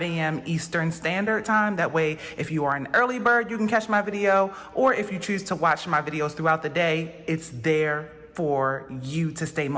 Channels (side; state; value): both; identical; correlation 1.00